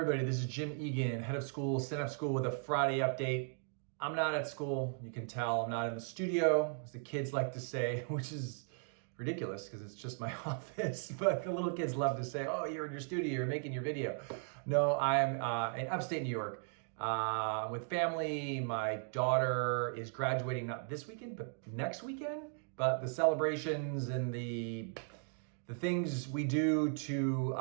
this is Jim Egan, head of school, Synapse School with a Friday update. I'm not at school, you can tell. I'm not in the studio, as the kids like to say, which is ridiculous because it's just my office. But the little kids love to say, oh, you're in your studio, you're making your video. No, I'm in upstate New York with family. My daughter is graduating not this weekend, but next weekend. But the celebrations and the things we do to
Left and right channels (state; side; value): silent; left; 53 dB below the other